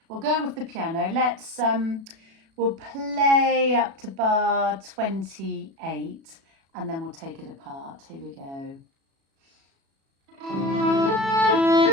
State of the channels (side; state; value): left; late; 36 ms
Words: We'll go with the piano. Let's we'll play up to bar 28, and then we'll take it apart. Here we go.